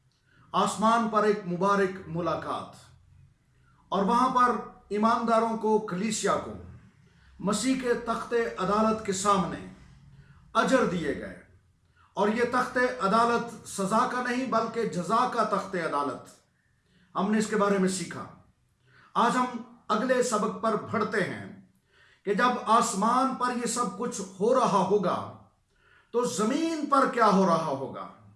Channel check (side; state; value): both; identical; correlation 1.00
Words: آسمان پر ایک مبارک ملاقات، اور وہاں پر ایمانداروں کو، کلیسیا کو مسیح کے تخت عدالت کے سامنے اجر دیے گئے، اور یہ تخت عدالت سزا کا نہیں بلکہ جزا کا تخت عدالت، ہم نے اس کے بارے میں سیکھا۔ آج ہم اگلے سبق پر بڑھتے ہیں کہ جب آسمان پر یہ سب کچھ ہو رہا ہوگا تو زمین پر کیا ہو رہا ہوگا۔